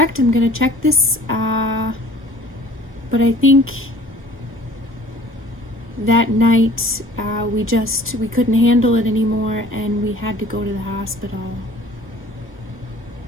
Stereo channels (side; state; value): both; normal; correlation 0.50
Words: I'm going to check this. But I think that night we couldn't handle it anymore and we had to go to the hospital.